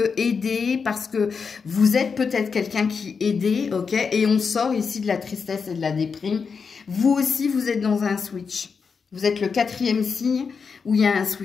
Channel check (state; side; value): quieter; right; 5.5 dB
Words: aidé, parce que vous êtes peut-être quelqu'un qui aidé, ok? Et on sort ici de la tristesse et de la déprime. Vous aussi, vous êtes dans un switch. Vous êtes le 4e signe où il y a un